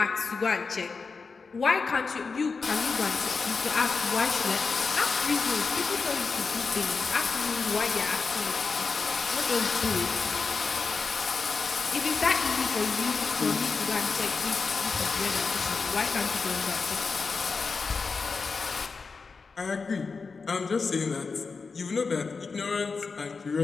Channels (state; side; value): quieter; right; 4.7 dB